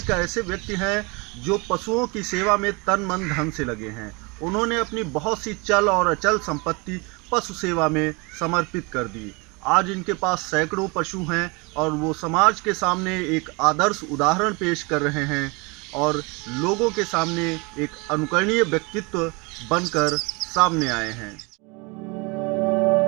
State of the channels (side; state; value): left; quieter; 28.2 dB